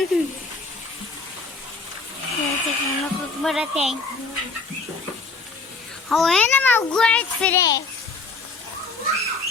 دلوقتي هنخرج مرة تاني هو هنا موجوعة فراخ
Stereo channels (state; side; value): quieter; right; 3.9 dB